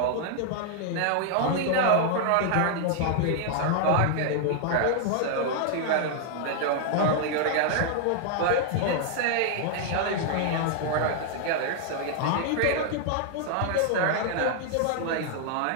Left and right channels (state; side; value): different; both; correlation 0.00